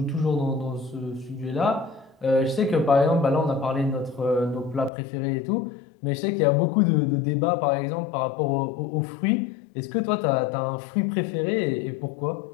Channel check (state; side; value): drops out; right; at 4.9 s